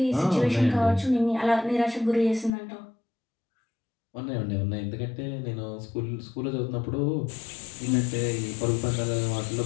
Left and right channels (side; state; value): right; drops out; at 2.5 s